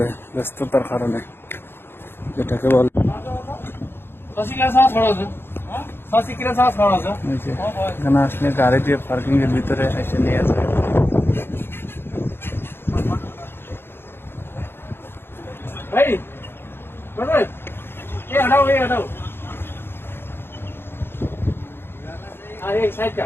ব্যস্ততার কারণে, যেটাকে বলে এখানে আসলে গাড়ি দিয়ে পার্কিং এর ভিতরে এসে নিয়ে যায়। साइड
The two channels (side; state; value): right; late; 0.11 ms